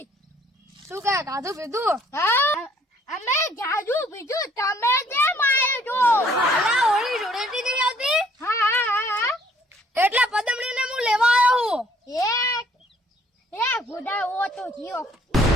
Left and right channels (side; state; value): both; normal; correlation 0.62